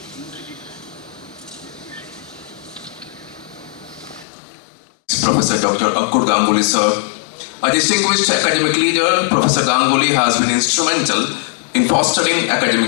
Professor Dr. Ankur Ganguly, sir. A distinguished academic leader, Professor Ganguly has been instrumental in fostering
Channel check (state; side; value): drops out; right; at 4.2 s